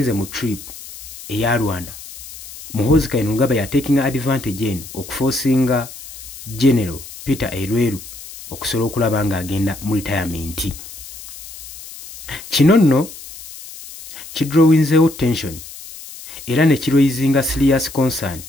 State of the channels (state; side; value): noise; left; hiss, 15 dB below the sound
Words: mu trip eya Rwanda. Muhoozi Kainerugaba ya taking advantage eno okuforcinga General Peter Elweru okusobola okulaba nga agenda mu retirement. Kino nno kidrowinzeewo tension era ne kiraisinga serious concern